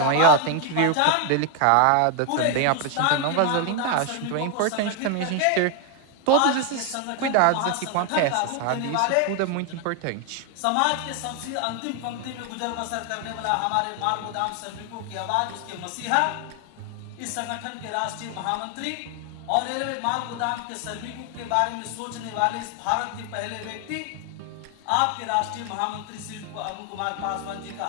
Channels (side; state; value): both; different; correlation 0.01